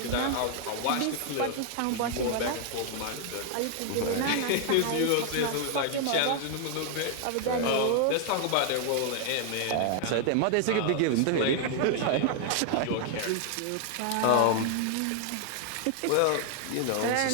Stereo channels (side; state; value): both; different; correlation 0.00